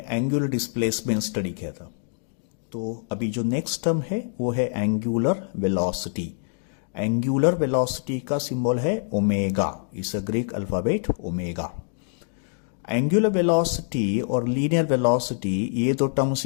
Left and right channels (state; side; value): silent; right; digital silence